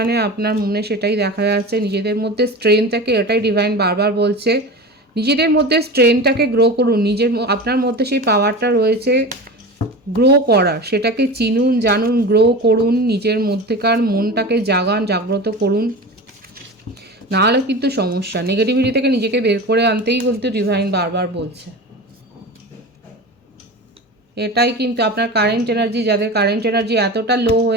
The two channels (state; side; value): normal; both; correlation 0.30